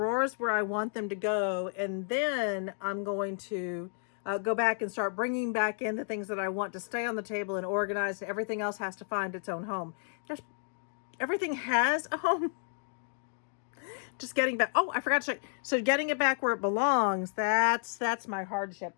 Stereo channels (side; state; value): right; silent; digital silence